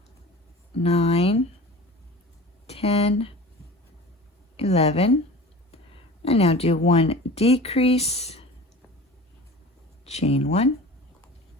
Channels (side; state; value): both; normal; correlation 0.38